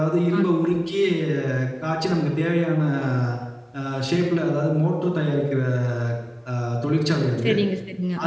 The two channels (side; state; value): both; identical; correlation 1.00